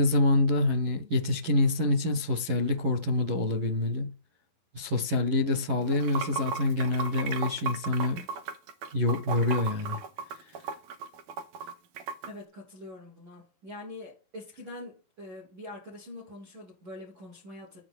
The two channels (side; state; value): left; late; 11 ms